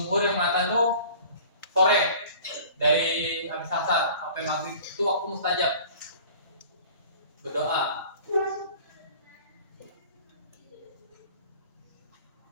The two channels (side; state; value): both; inverted; correlation -0.46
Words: yang mengatakan tuh sore dari habis asar sampai maghrib itu waktu mustajab berdoa.